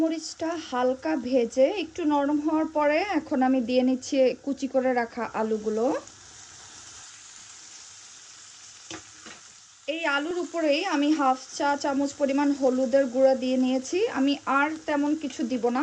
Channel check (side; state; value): both; identical; correlation 1.00